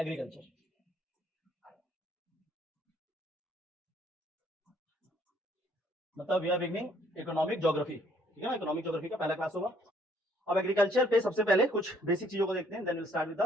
मतलब we are beginning economic geography, ठीक है ना। इकोनॉमिक ज्योग्राफी का पहला क्लास होगा। अब एग्रीकल्चर पे सबसे पहले कुछ बेसिक चीजों को देखते हैं, then will start with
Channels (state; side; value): normal; both; correlation 0.64